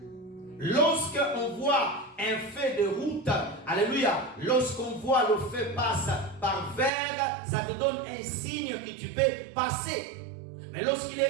Lorsqu'on voit un feu de route, alléluia, lorsqu'on voit le feu passe par vert, ça te donne un signe que tu peux passer. Mais lorsqu'il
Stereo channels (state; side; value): drops out; left; at 6.9 s